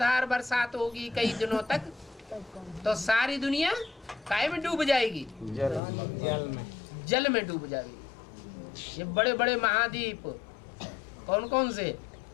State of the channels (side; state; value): right; drops out; at 5.8 s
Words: बरसात होगी कई दिनों तक तो सारी दुनिया काय में डूब जाएगी? जल में डूब जाएगी। ये बड़े बड़े महाद्वीप कौन कौन से?